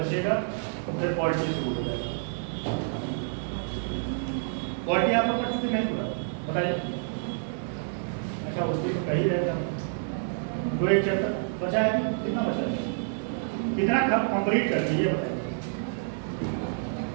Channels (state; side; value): silent; left; digital silence